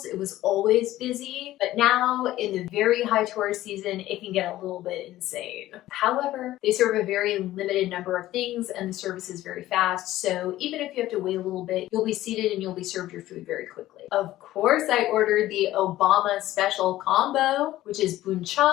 It was always busy, but now in the very high tourist season, it can get a little bit insane. However, they serve a very limited number of things and the service is very fast. So even if you have to wait a little bit, you'll be seated and you'll be served your food very quickly. Of course, I ordered the Obama special combo, which is bún chả,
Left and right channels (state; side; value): quieter; right; 15.0 dB